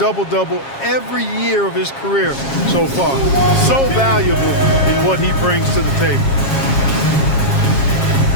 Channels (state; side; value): late; right; 7.4 ms